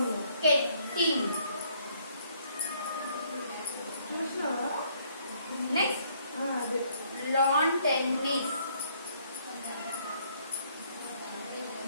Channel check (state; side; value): inverted; both; correlation -0.66